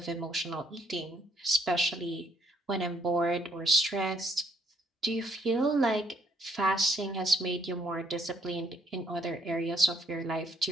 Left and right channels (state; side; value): normal; both; correlation 0.68